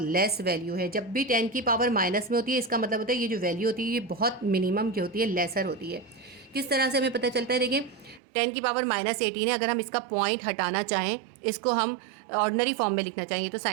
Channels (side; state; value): left; drops out; at 8.2 s